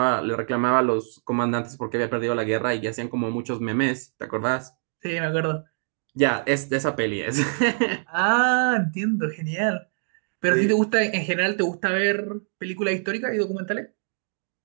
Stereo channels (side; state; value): left; silent; 62 dB below the other